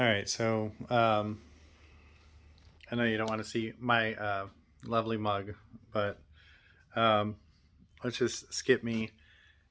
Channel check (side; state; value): both; identical; correlation 1.00